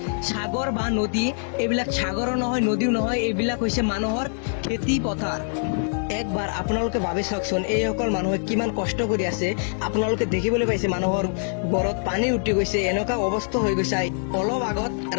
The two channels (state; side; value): silent; right; digital silence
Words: সাগৰ বা নদী। এইবিলাক সাগৰো নহয়, নদীও নহয়, এইবিলাক হৈছে মানুহৰ খেতি পথাৰ। একবাৰ আপোনালোকে ভাবি চাওকচোন, এইসকল মানুহে কিমান কষ্ট কৰি আছে। আপোনালোকে দেখিবলৈ পাইছে মানুহৰ ঘৰত পানী উঠি গৈছে, এনেকুৱা অৱস্থা হৈ গৈছে। অলপ আগত